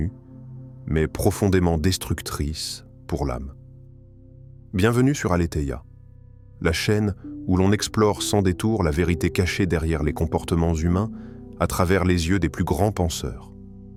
mais profondément destructrices pour l'âme. Bienvenue sur Aletheia, la chaîne où l'on explore sans détour la vérité cachée derrière les comportements humains à travers les yeux des plus grands penseurs.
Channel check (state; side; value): identical; both; correlation 1.00